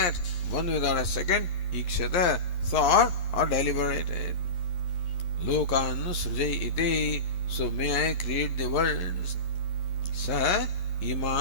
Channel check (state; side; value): late; right; 11 ms